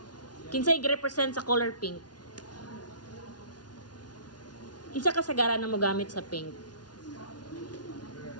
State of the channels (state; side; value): late; right; 0.69 ms